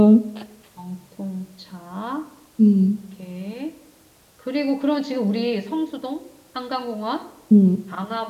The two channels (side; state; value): both; identical; correlation 1.00